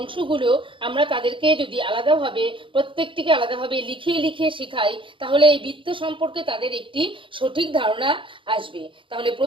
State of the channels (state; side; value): late; left; 0.25 ms